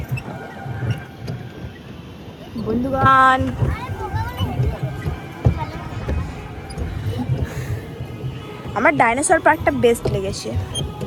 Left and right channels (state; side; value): identical; both; correlation 1.00